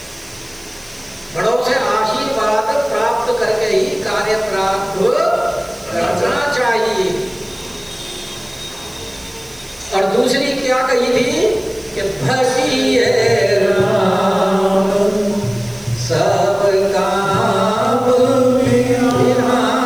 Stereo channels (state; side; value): noise; right; hiss, 25 dB below the sound